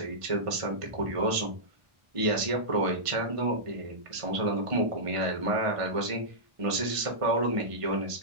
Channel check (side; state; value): left; late; 1.5 ms